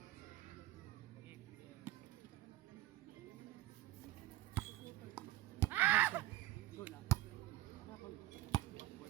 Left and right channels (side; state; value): left; quieter; 15.7 dB